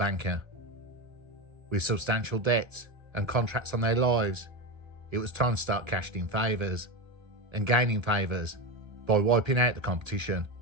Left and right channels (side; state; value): left; late; 1.3 ms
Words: With substantial debts and contracts on their lives, it was time to start cashing in favours and gaining favours by wiping out the competition